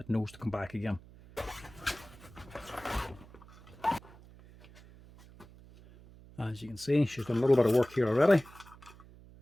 knows to come back again. As you can see, she's done a little bit of work here already.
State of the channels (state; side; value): noise; right; hum, 21 dB below the sound